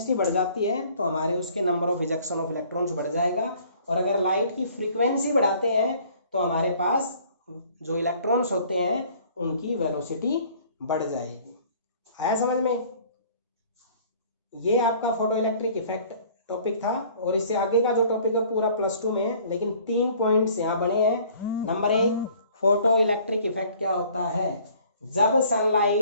बढ़ जाती है तो हमारे उसके number of ejection of electrons बढ़ जाएगा, और अगर लाइट की फ्रीक्वेंसी बढ़ाते हैं तो हमारे पास जो इलेक्ट्रॉन्स होते हैं उनकी वेलोसिटी बढ़ जाएगी। आया समझ में। ये आपका फोटो इलेक्ट्रिक इफेक्ट टॉपिक था, और इससे आगे का जो टॉपिक है पूरा +2 में है, लेकिन 3 पॉइंट्स यहाँ बने हैं। नंबर 1, फोटो इलेक्ट्रिक इफेक्ट क्या होता है, जब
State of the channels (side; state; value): both; inverted; correlation -0.55